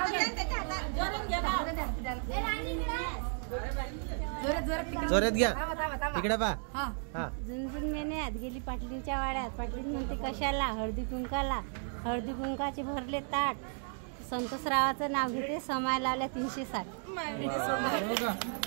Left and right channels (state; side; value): silent; left; 55 dB below the other